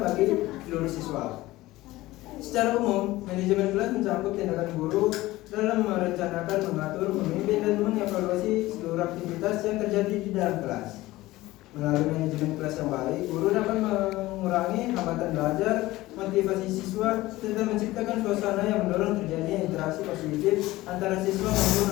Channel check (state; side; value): quieter; right; 18.0 dB